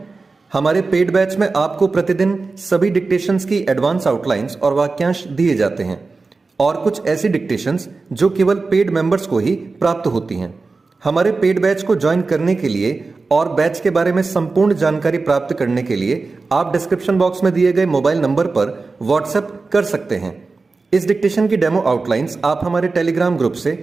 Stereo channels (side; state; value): left; quieter; 3.9 dB